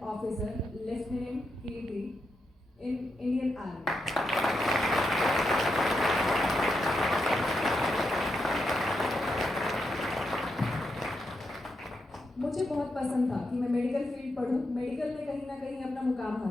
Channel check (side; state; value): both; normal; correlation 0.84